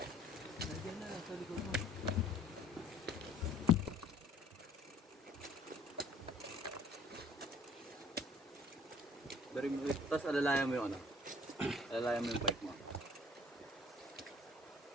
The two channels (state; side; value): normal; both; correlation 0.55